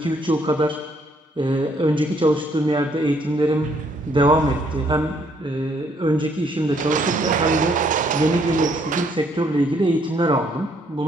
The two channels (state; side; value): normal; both; correlation 0.68